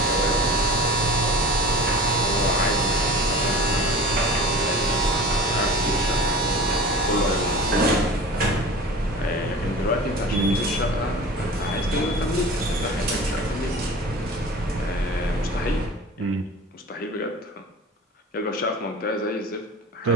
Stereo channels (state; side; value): normal; both; correlation 0.38